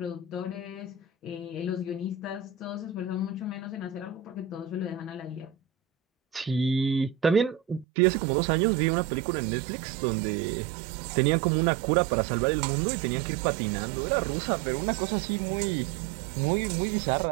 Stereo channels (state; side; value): drops out; left; at 7.9 s